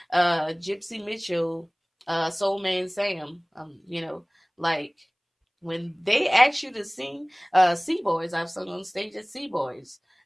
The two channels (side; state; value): both; identical; correlation 1.00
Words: Gypsy Mitchell, Soul Man Sam, you know, like when they ask you to sing Sea Boys, I've sung on stage at Sea Boys,